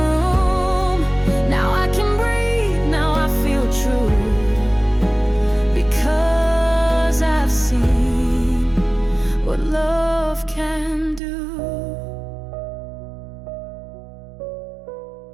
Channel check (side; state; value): left; drops out; at 11.2 s